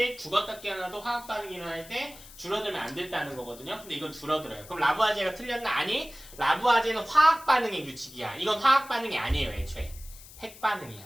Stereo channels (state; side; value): noise; left; hiss, 18 dB below the sound